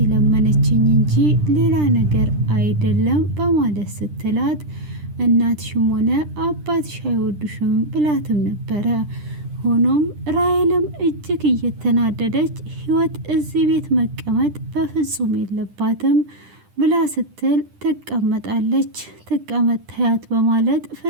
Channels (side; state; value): left; late; 10 ms